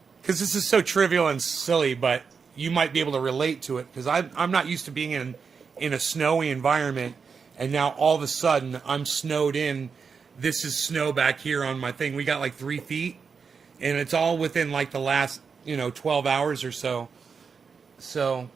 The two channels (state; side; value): quieter; left; 5.7 dB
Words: because this is so trivial and silly, but you might be able to relate to it. Because I'm not used to being in a snowy environment, and now all of a sudden I'm snowed in. This is snow back here on my thing. We got like 3 feet, and it's all within like the last 12 hours or so. So